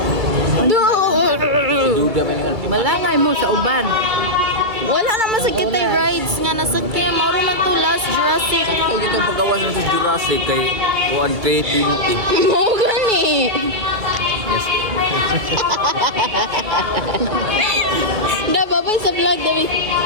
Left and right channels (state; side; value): late; left; 2.2 ms